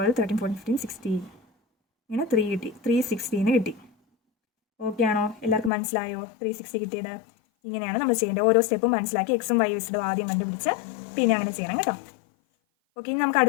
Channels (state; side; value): drops out; right; at 5.7 s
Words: 13 14 15 16 ഇങ്ങനെ 3 കിട്ടി. 360 കിട്ടി. ഓക്കെ ആണോ? എല്ലാവർക്കും മനസ്സിലായോ 360 കിട്ടിയത്? ഇങ്ങനെയാണ് നമ്മൾ ചെയ്യേണ്ടത്. ഓരോ സ്റ്റെപ്പും മനസ്സിലാക്കി എക്സും വൈ ഇസഡും ആദ്യം കണ്ടുപിടിച്ച് പിന്നെ അങ്ങനെ ചെയ്യണം കേട്ടോ. ഓക്കെ, ഇനി നമുക്ക്